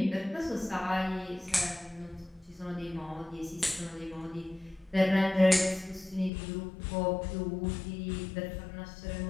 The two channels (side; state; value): right; drops out; at 6.3 s